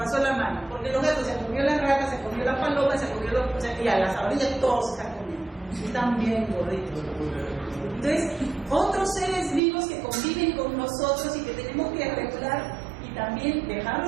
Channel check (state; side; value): drops out; left; at 9.6 s